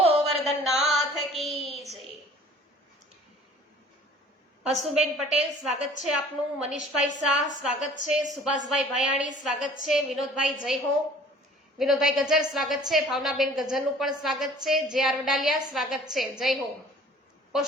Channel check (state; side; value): normal; both; correlation 0.50